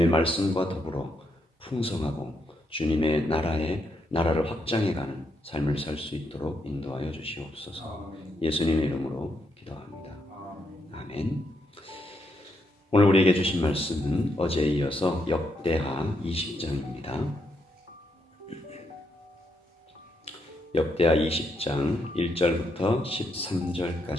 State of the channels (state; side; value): normal; both; correlation 0.79